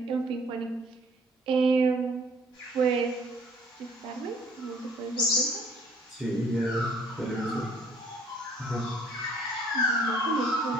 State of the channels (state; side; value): normal; both; correlation 0.57